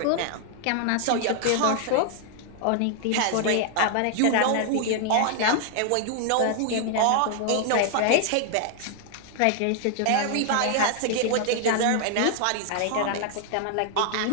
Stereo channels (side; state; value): both; different; correlation 0.00